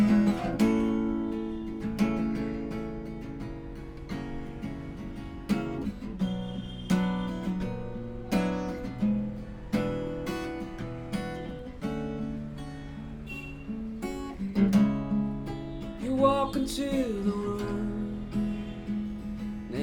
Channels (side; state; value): both; identical; correlation 1.00